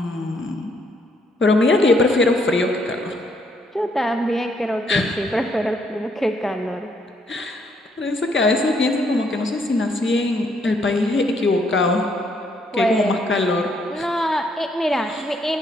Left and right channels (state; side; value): normal; both; correlation 0.71